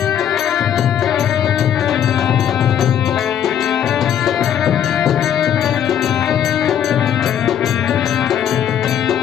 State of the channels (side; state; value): right; quieter; 9.6 dB